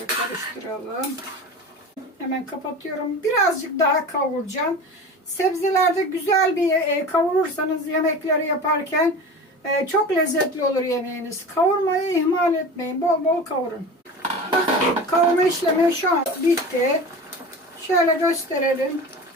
karıştıralım. Hemen kapatıyorum. Birazcık daha kavuracağım. Sebzelerde güzel bir kavurursanız yemekleri yaparken çok lezzetli olur yemeğiniz. Kavurmayı ihmal etmeyin. Bol bol kavurun. Bakın, kavurma işlemi şu an bitti. Şöyle gösterelim.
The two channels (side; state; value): both; normal; correlation 0.33